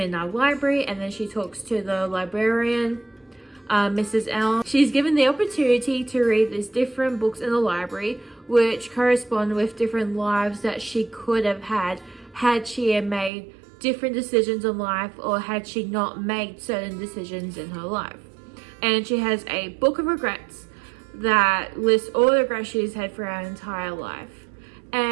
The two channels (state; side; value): drops out; left; at 13.3 s